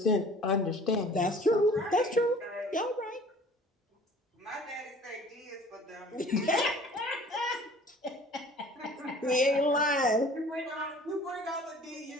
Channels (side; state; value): both; normal; correlation 0.49